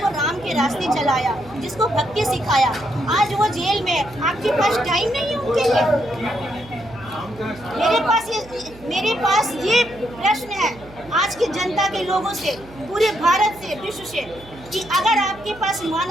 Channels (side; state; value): right; noise; hum, 20 dB below the sound